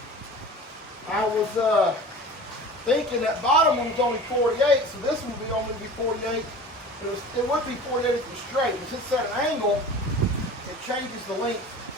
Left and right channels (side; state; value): both; normal; correlation 0.39